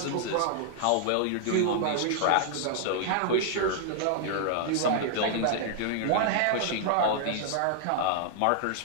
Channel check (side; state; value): both; different; correlation -0.01